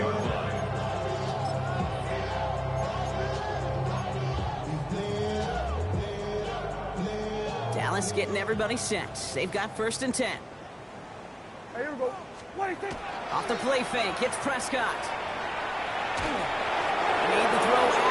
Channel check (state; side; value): identical; both; correlation 1.00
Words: line. Dallas getting everybody set. They've got 1st and 10. Hey, here we go. What do you think? Off the play fake, hits Prescott. Made the throw